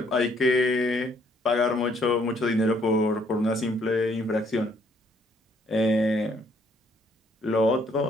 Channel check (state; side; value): normal; both; correlation 0.66